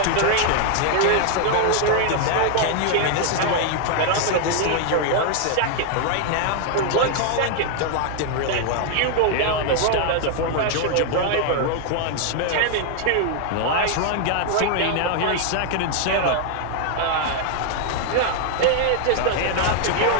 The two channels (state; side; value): different; both; correlation 0.00